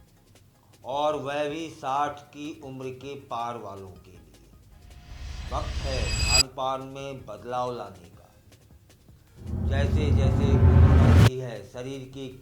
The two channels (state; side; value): identical; both; correlation 1.00